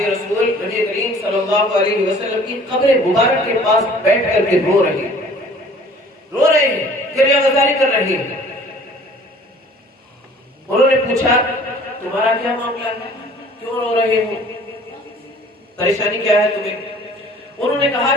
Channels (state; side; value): normal; both; correlation 0.51